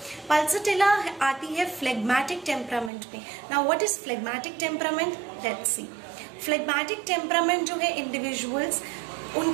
पल्सटिला आती है फ्लेग्मेटिक टेम्परामेंट में। Now what is phlegmatic temperament, let's see. Phlegmatic temperament जो है इंडिविजुअल्स,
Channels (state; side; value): drops out; left; at 2.9 s